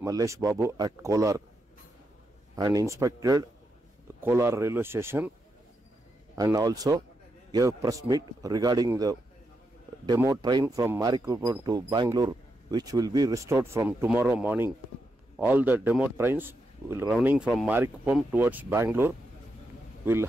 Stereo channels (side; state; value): both; normal; correlation 0.84